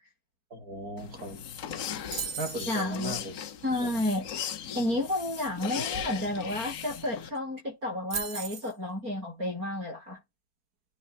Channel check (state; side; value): late; left; 4.8 ms